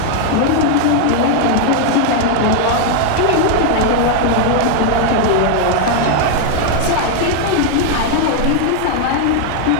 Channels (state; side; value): different; both; correlation 0.00